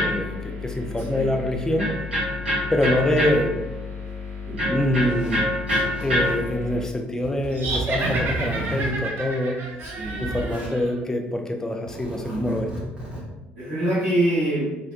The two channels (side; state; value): both; normal; correlation 0.69